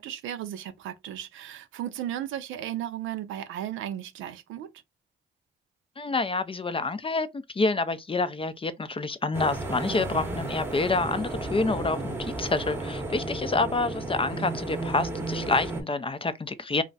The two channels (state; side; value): normal; both; correlation 0.32